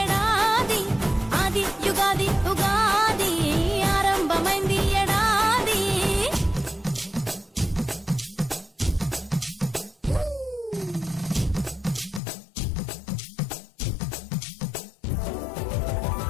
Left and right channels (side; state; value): right; drops out; at 12.2 s